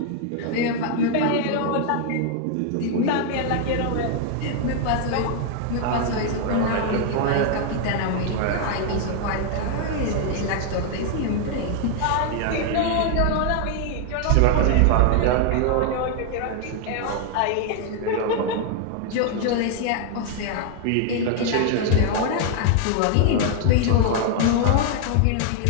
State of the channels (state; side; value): different; both; correlation 0.00